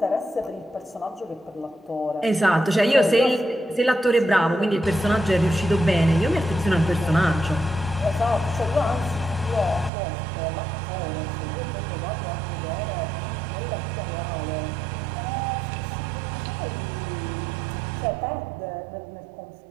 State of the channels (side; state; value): left; drops out; at 9.9 s